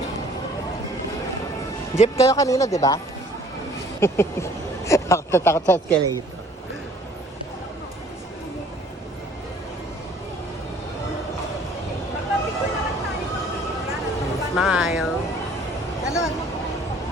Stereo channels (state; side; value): normal; both; correlation 0.55